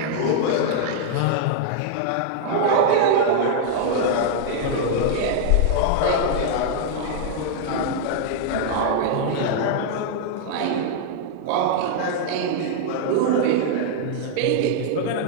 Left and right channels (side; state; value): both; different; correlation -0.01